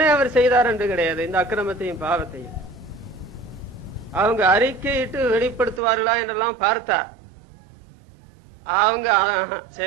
அவர் செய்தார் என்று கிடையாது. இந்த அக்கிரமத்தையும் பாவத்தையும் அவங்க அறிக்கையிட்டு வெளிப்படுத்துவார்களா என்றெல்லாம் பார்த்தா அவங்க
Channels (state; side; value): drops out; left; at 5.8 s